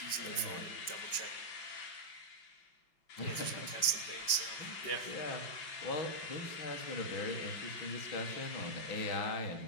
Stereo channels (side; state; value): right; late; 5.2 ms